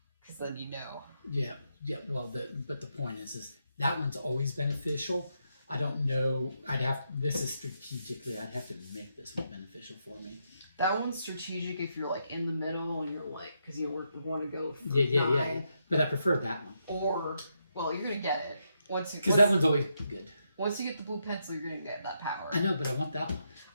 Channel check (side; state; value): both; inverted; correlation -0.80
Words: because then you know. Yeah. Well, but the point is that one's always beneficial. I don't know. This is strategically. I'd have to make this one beneficial for me. That one's strategic if you're like in the middle and you're like, because you want to go for Yeah. 9. But I prefer that one. Or, well, you're gonna get it Because that one's always good. Once you get the blue pencil, you're gonna get that power. I know, but I want that one.